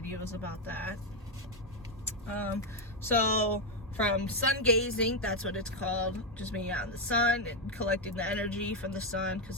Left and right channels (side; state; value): both; normal; correlation 0.04